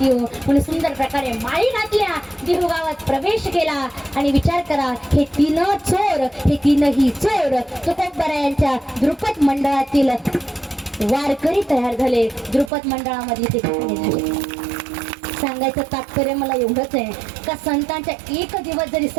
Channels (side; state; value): left; drops out; at 12.7 s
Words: येऊ. म्हणून सुंदर प्रकारे माळी घातल्या, देहू गावात प्रवेश केला. आणि विचार करा, हे तीन चोर, हे तीनही चोर तुकोबरायांच्या द्रुपद मंडळातील वारकरी तयार झाले. द्रुपद मंडळामध्ये ते ठिकाणी झाले. सांगायचं तात्पर्य मला एवढंच आहे का संतांच्या एक दिवस जरी